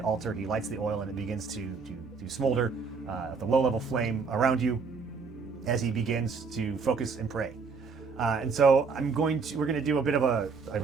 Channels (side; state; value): left; quieter; 5.0 dB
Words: altar, he lights the oil, and it begins to smolder at the low-level flame around you as he begins to focus and pray. And so we're going to do a bit of a